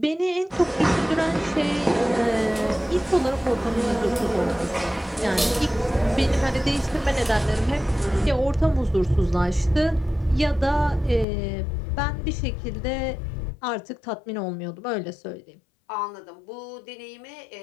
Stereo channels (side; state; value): right; drops out; at 11.2 s